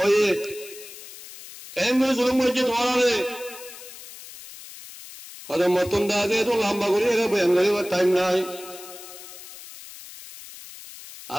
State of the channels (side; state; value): left; noise; hiss, 16 dB below the sound